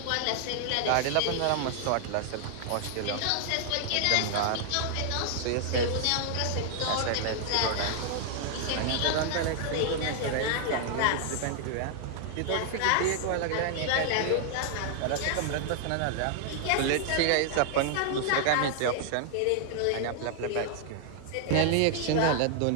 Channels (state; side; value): different; both; correlation 0.00